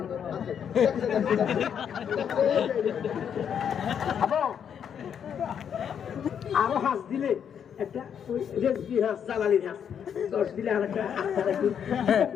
আবো আরো হাঁস দিলে একটা ওই রেজবি হাঁস জালালি হাঁস 10 দিলে আর একটা আটটা রাখি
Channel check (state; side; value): quieter; right; 8.1 dB